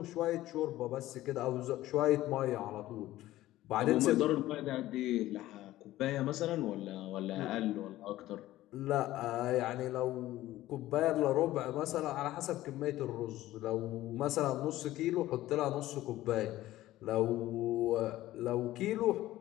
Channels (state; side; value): quieter; right; 15.5 dB